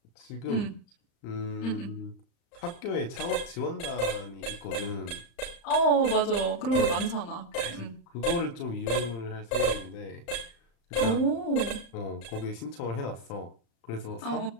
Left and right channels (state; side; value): late; right; 35 ms